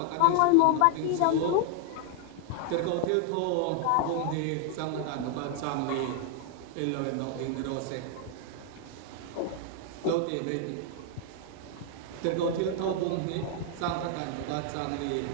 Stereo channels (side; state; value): both; different; correlation 0.00